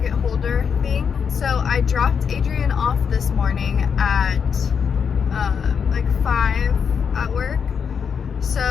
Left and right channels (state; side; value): quieter; right; 6.7 dB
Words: holder thing. So I dropped Adrian off this morning at like 5 at work.